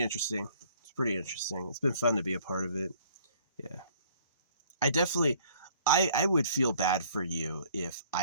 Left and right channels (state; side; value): inverted; both; correlation -0.57